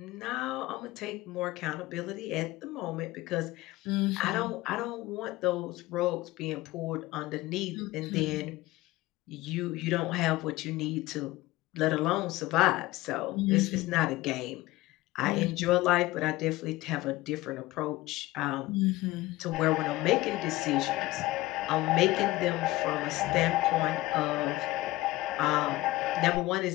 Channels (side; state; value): right; quieter; 18.6 dB